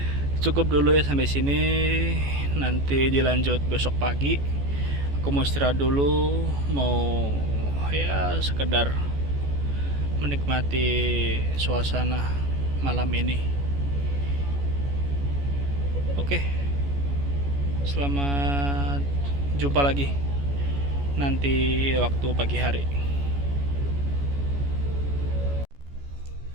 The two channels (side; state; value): left; late; 14 ms